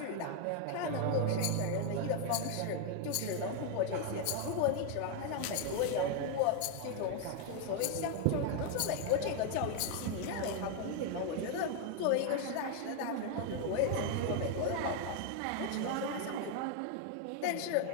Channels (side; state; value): both; different; correlation 0.01